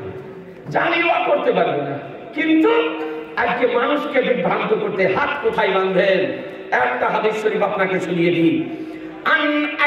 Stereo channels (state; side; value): identical; both; correlation 1.00